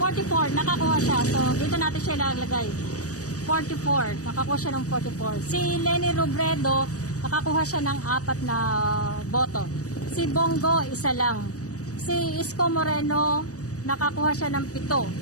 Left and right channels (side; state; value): right; late; 0.66 ms